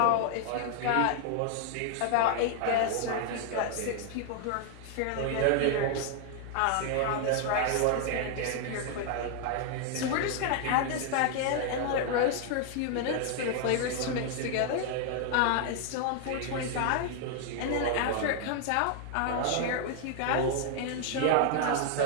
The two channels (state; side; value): different; both; correlation 0.00